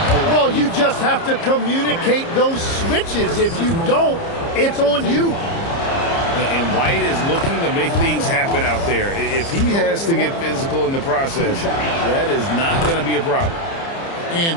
Well, you just have to communicate those switches. If you don't, it's on you. And White is looking to make things happen out there. If he has to get physical in the process, that is not going to be a problem.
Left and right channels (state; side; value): late; right; 30 ms